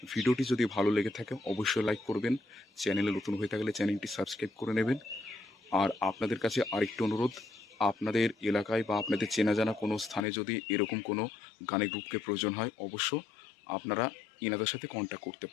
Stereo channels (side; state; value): right; drops out; at 10.2 s